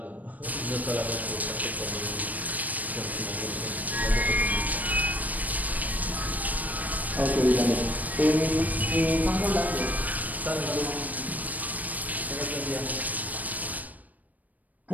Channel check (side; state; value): left; late; 0.077 ms